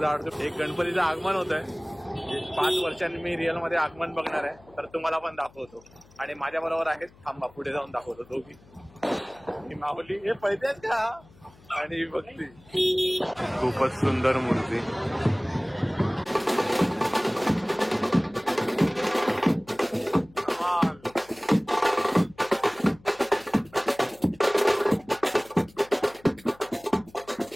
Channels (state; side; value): noise; left; hum, 26 dB below the sound